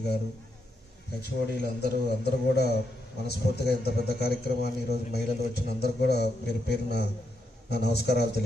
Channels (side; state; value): both; normal; correlation 0.81